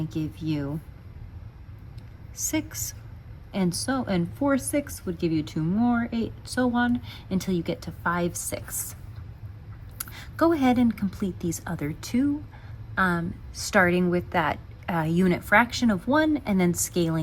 give you 6. And 4/6 would give you 2 more, 8, so on, until you get to 5/6. Go ahead and complete these other 2, starting with that unit fraction of 1 and then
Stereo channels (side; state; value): both; identical; correlation 1.00